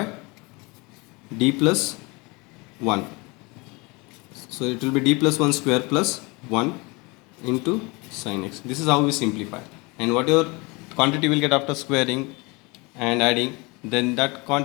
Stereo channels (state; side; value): quieter; right; 26.5 dB